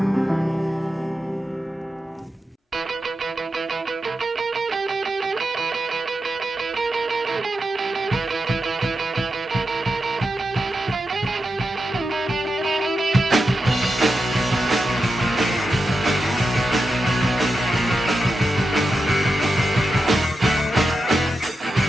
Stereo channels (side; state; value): both; normal; correlation 0.89